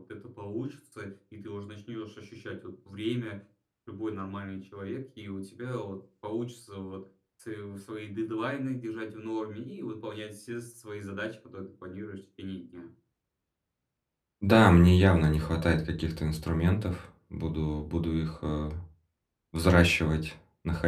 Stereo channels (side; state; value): both; identical; correlation 1.00